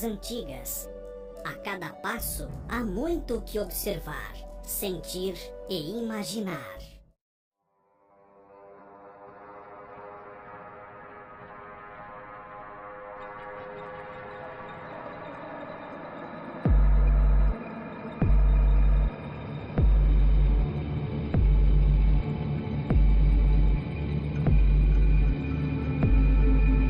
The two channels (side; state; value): both; identical; correlation 1.00